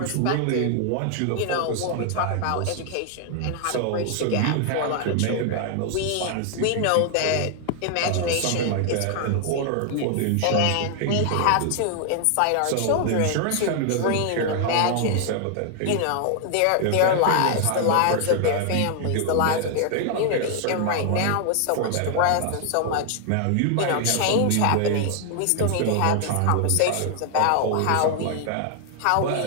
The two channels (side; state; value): both; different; correlation 0.00